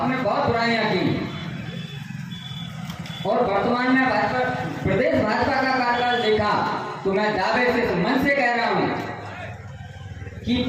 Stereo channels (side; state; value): both; identical; correlation 1.00